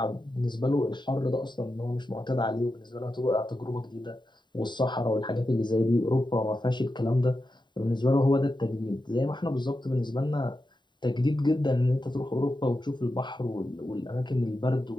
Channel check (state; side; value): late; right; 0.22 ms